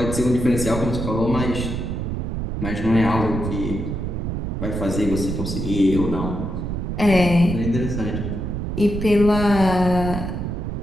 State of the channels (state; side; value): noise; right; rumble, 3 dB below the sound